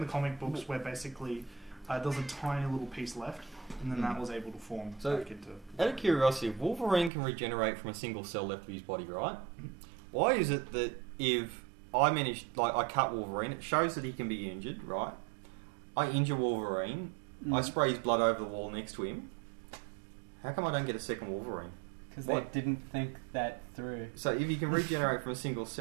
comic books where basically there was a tiny little piece left, and then that was able to form back into... Out of curiosity, if Wolverine can regenerate from a single cell left of his body, right? Why is it that if I cut Wolverine, it shows that he can be injured, right? I injure Wolverine, I spray his blood over the wall next to him. How come I don't get a second Wolverine? Because they didn't think that through. So if he can regenerate from a single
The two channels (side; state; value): left; drops out; at 7.1 s